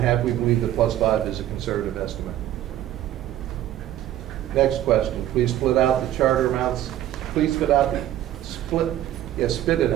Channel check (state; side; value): quieter; left; 12.8 dB